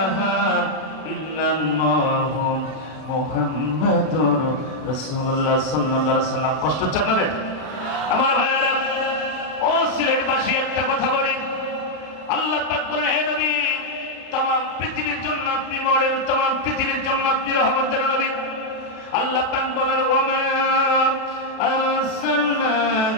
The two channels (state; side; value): late; right; 33 ms